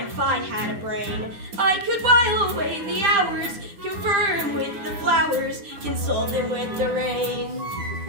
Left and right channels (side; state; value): left; late; 10 ms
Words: if I had a brain, I could while away the hours, confer with the flowers, console them with the rain.